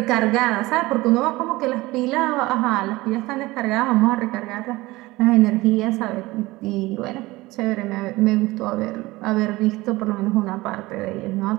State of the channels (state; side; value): quieter; left; 20.0 dB